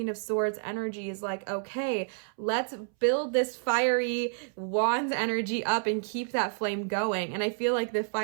of Swords energy is like, okay, let's build this fiery Wands energy up and keep that flame going. And I feel like the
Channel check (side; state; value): left; silent; 58 dB below the other